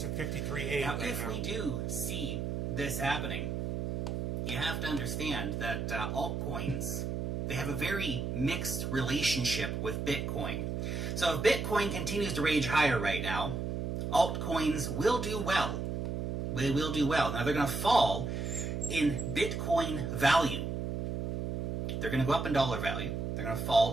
a 53.8 Now, right if now. we do see this happening, you have to understand that altcoins, they have a very mixed relationship with Bitcoin. So if Bitcoin continues to rage higher right now, altcoins will do well. They will do well. Now, they're going to fall in Bitcoin value. They're going to go up in dollar value. They're going to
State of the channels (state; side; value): noise; right; hum, 2 dB below the sound